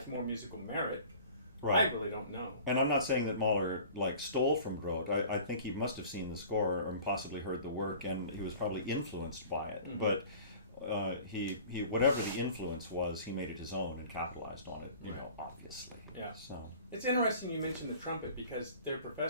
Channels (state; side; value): inverted; both; correlation -0.45